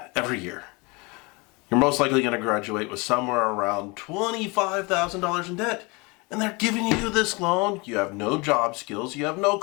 every year. You're most likely going to graduate with somewhere around $25,000 in debt, and they're giving you this loan. You have no job skills, you have no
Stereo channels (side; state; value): right; quieter; 27.3 dB